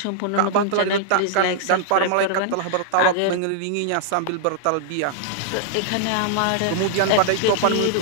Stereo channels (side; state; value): both; different; correlation -0.01